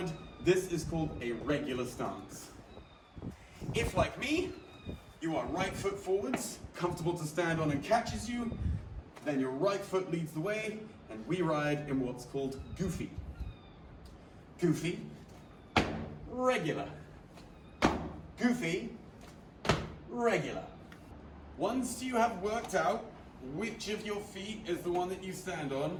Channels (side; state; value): both; identical; correlation 1.00